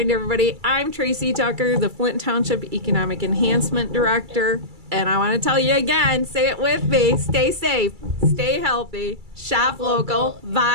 everybody, I'm Tracey Tucker, the Flint Township Economic Enhancement Director. And I want to tell you again, say it with me, stay safe, stay healthy, shop local,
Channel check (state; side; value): late; left; 2.3 ms